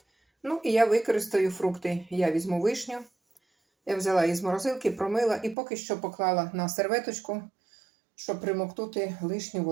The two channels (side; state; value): left; drops out; at 5.6 s